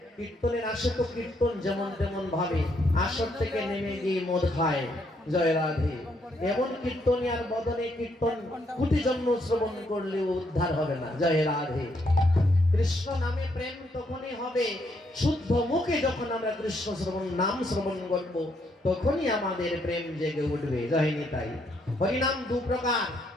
কীর্তনের আসে তো কীর্তন যেমন তেমন ভাবে আসর থেকে নেমে গিয়ে মদ খায় জয় রাধে এমন কীর্তনিয়ার বদনে কীর্তন কোটি জন্ম শ্রবণ করলেও উদ্ধার হবে না জয় রাধে কৃষ্ণ নামে প্রেম তখনই হবে শুদ্ধ মুখে যখন আমরা কৃষ্ণ শ্রবণ নাম শ্রবণ করব তখনই আমাদের প্রেম জেগে উঠবে জয় নিতাই হরিনাম দু প্রকার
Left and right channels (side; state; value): both; normal; correlation 0.73